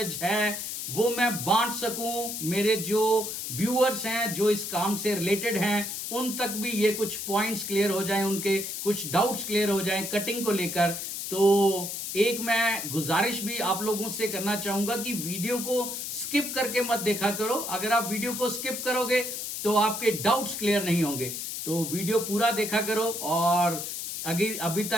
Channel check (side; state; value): left; noise; hiss, 5 dB below the sound